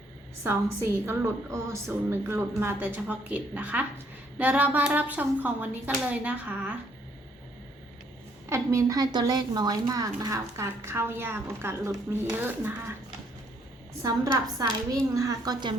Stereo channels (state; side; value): normal; both; correlation 0.67